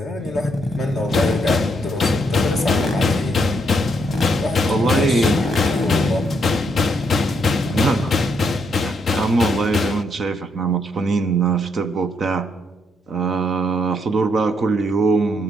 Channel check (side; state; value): both; normal; correlation 0.75